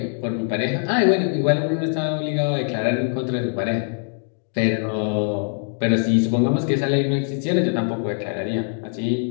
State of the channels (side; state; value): right; silent; 62 dB below the other